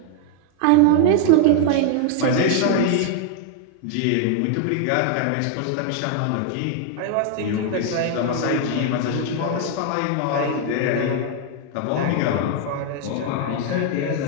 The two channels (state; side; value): different; both; correlation 0.00